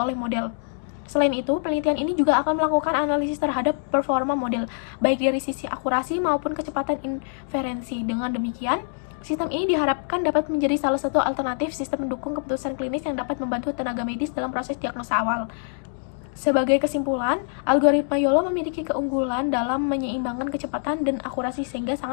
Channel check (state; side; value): silent; right; 62 dB below the other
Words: model. Selain itu, penelitian ini juga akan melakukan analisis terhadap performa model, baik dari sisi akurasi maupun kecepatan inferensi. Dengan demikian, sistem ini diharapkan dapat menjadi salah satu alternatif sistem mendukung keputusan klinis yang dapat membantu tenaga medis dalam proses diagnosa awal. Sebagai kesimpulan, algoritma YOLO memiliki keunggulan dalam menyeimbangkan kecepatan dan akurasi sehingga